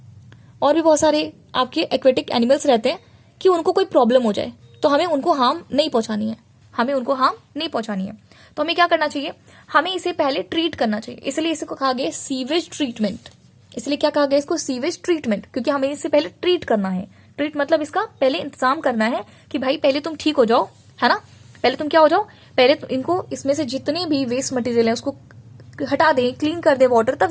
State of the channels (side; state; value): both; identical; correlation 1.00